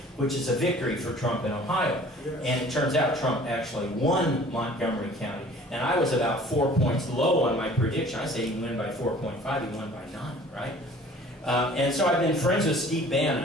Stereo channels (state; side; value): normal; both; correlation 0.49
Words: which is a victory for Trump in Ohio. And it turns out Trump actually won Montgomery County. And I was about 4 points low on my prediction. I said he won by 4.5, he won by 9, right? And so I've been friends with Steve